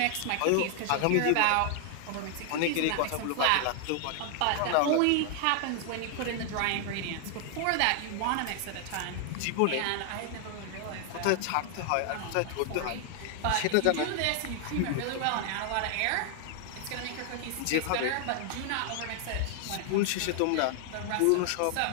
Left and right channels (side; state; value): both; different; correlation 0.00